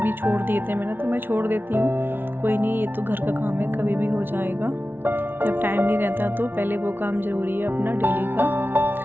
छोड़ दिए थे मैंने, तो मैं छोड़ देती हूँ, कोई नहीं, ये तो घर का काम है, कभी भी हो जाएगा। जब टाइम नहीं रहता तो पहले वो काम ज़रूरी है अपना डेली का।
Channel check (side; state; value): left; late; 0.10 ms